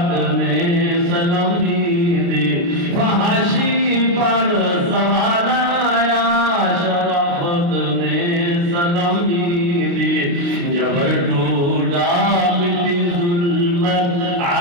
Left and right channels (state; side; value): late; left; 29 ms